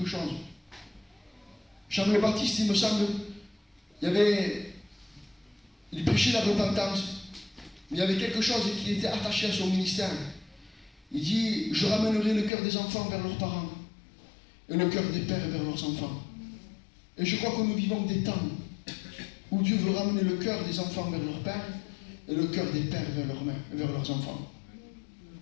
chose. Jean le Baptiste, il me semble, il prêchait la repentance, mais il y avait quelque chose qui était attaché à son ministère. Il dit, je ramènerai le cœur des enfants vers leurs parents, et le cœur des pères vers leurs enfants. Et je crois que nous vivons des temps où Dieu veut ramener le cœur des enfants vers leur père et le cœur des pères vers leurs enfants.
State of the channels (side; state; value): right; drops out; at 12.5 s